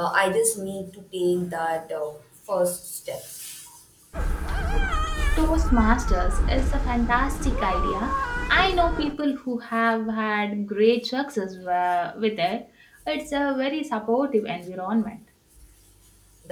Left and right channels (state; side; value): identical; both; correlation 1.00